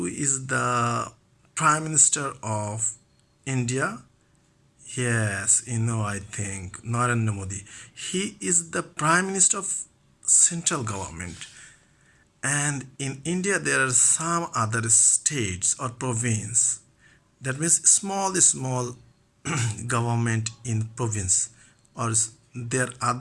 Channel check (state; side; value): identical; both; correlation 1.00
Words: is the Prime Minister of India? Yes, I think Narendra Modi. He is the Prime Minister of central government. And in India, there are some other states or province. That means small government in province or their